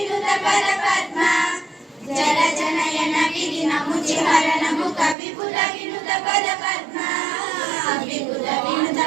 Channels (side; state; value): left; drops out; at 5.2 s